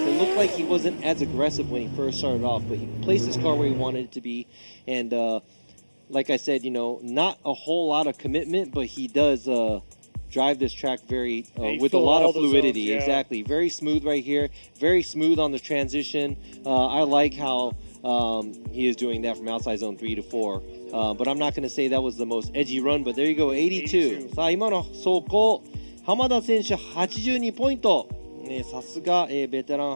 It looked like he wasn't as aggressive when he first started off, but he placed his car where he wanted it to be, and like I said, not a whole lot of commitment, but he does drive this track very with a lot of fluidity. Zones, yeah. Exactly, very smooth right here, very smooth on the transition. I like how he is doing that from outside zone 3 to 4. But I'm not going to say that was the most edgy run, but there you go, 82. さあ今の走行、浜田選手82ポイント。さすが、ベテラン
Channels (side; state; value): both; inverted; correlation -1.00